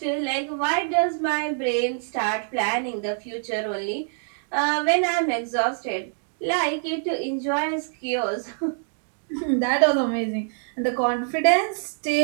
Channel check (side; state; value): left; silent; digital silence